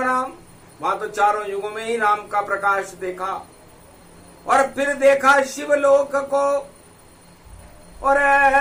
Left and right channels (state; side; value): identical; both; correlation 1.00